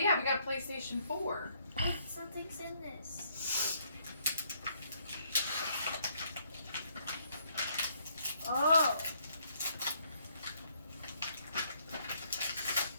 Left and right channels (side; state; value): both; inverted; correlation -0.69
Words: we got a PlayStation 4. Wait, something's in this. Oh.